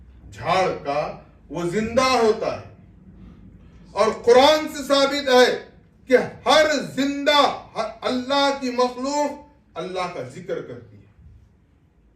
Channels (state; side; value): identical; both; correlation 1.00